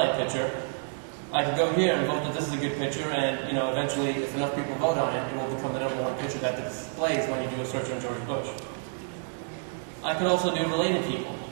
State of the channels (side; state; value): left; silent; 59 dB below the other